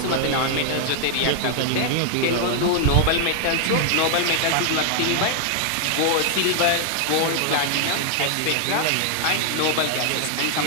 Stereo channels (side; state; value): both; different; correlation 0.00